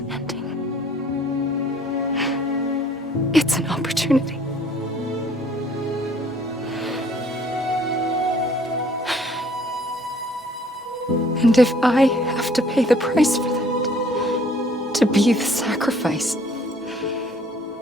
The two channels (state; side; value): normal; both; correlation 0.58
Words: ending. It's an opportunity. And if I have to pay the price for that, to be the sacrifice,